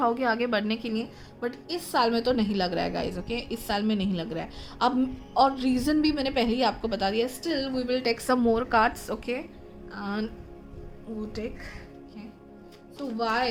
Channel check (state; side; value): identical; both; correlation 1.00